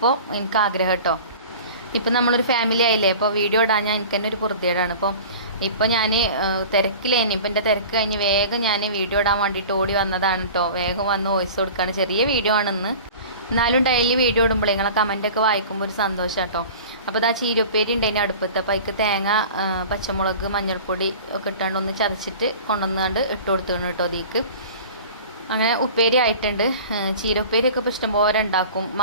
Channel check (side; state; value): both; inverted; correlation -0.40